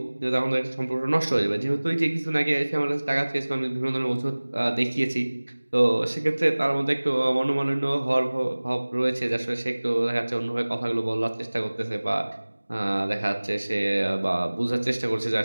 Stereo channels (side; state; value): both; inverted; correlation -1.00